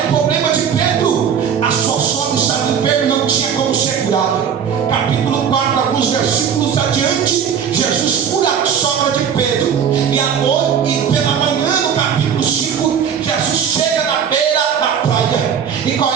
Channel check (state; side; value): quieter; left; 7.7 dB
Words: o problema de Pedro? A sua sogra estava enferma e não tinha como ser curada. Capítulo 4, alguns versículos adiante, Jesus cura a sogra de Pedro. E pela manhã, no capítulo 5, Jesus chega na beira da praia. E qual